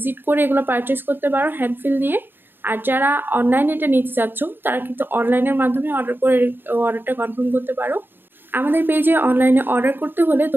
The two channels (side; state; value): left; late; 0.097 ms